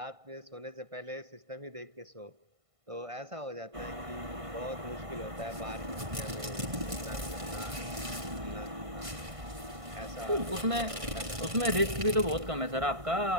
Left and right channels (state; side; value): late; left; 1.5 ms